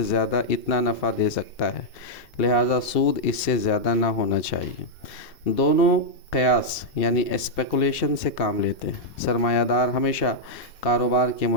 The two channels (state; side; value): late; right; 2.7 ms